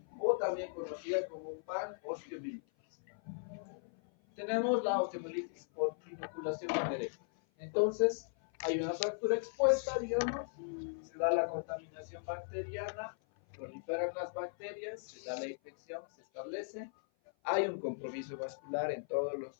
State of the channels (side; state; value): right; silent; 53 dB below the other